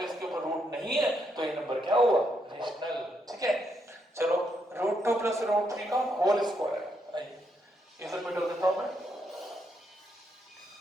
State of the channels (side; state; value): both; normal; correlation 0.78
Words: इसके ऊपर रूट नहीं है तो ये नंबर क्या हुआ, रेशनल। ठीक है, चलो रूट 2 प्लस रूट 3 का होल स्क्वायर, आइए इसे मिटा देता हूं मैं।